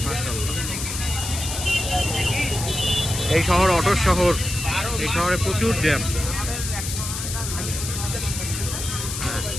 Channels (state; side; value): noise; left; hiss, 5 dB below the sound